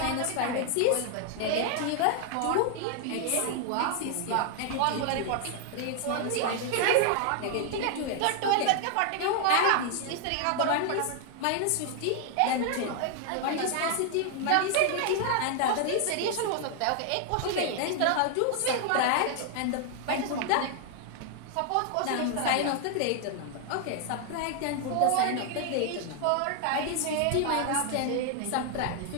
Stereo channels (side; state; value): both; different; correlation 0.00